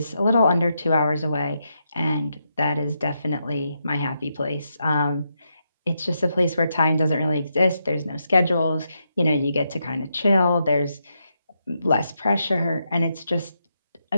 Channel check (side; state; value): both; inverted; correlation -0.82